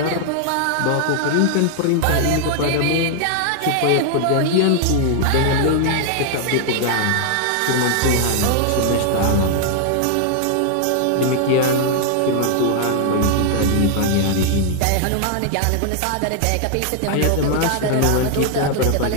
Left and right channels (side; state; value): both; different; correlation 0.00